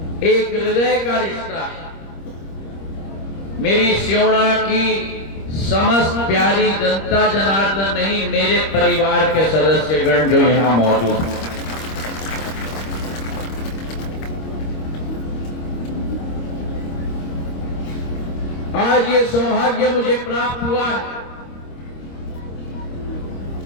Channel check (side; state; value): right; late; 25 ms